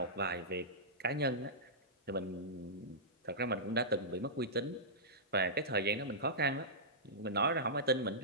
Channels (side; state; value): both; normal; correlation -0.16